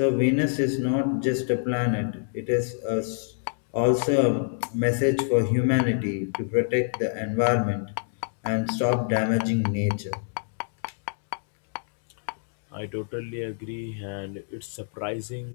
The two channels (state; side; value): silent; right; digital silence